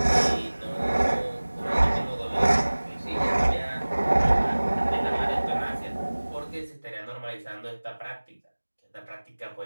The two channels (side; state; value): both; inverted; correlation -1.00